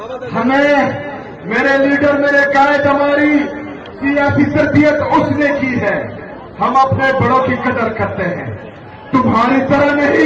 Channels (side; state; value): both; identical; correlation 1.00